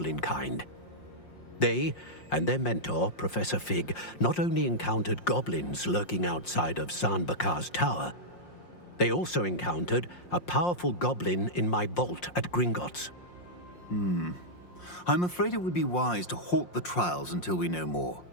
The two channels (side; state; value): right; late; 5.6 ms